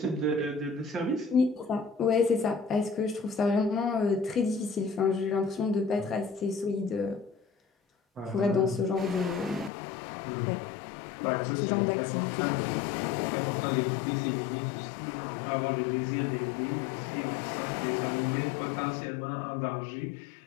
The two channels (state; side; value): drops out; right; at 9.7 s